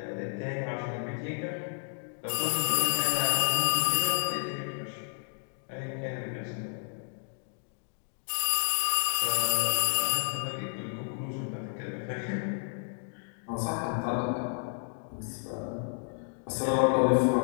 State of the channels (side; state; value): right; silent; 57 dB below the other